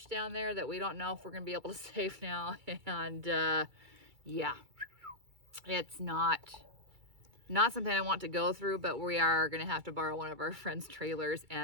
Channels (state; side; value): late; left; 2.3 ms